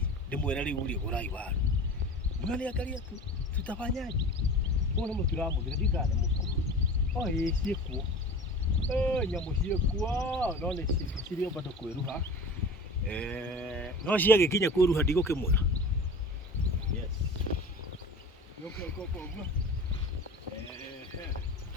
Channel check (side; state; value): both; normal; correlation 0.37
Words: ndĩmwĩre rĩu rĩ gũrai waru mnaniangalia tu tutafanyaje mbona mũtiramũthira ndikane mũkuru ciĩkuo nyamũ ciĩkuo no nĩ cirĩ bado kwĩruha no ciagĩkinya kwĩruha ndigũkĩmwĩra yes uguo